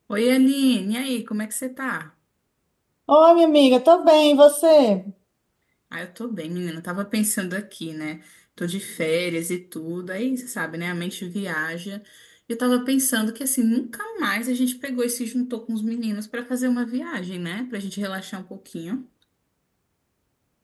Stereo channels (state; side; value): identical; both; correlation 1.00